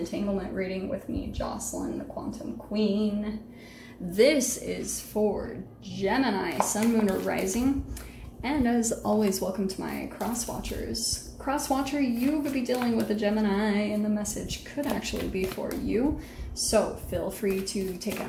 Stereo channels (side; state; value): both; identical; correlation 1.00